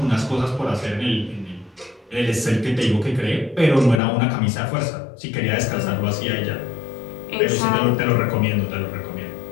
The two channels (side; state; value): right; drops out; at 4.0 s